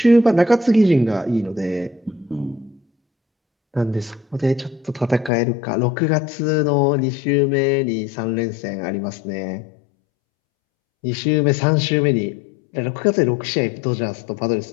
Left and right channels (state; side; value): drops out; right; at 5.3 s